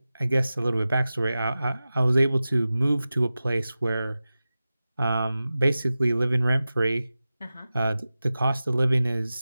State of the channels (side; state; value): both; inverted; correlation -0.95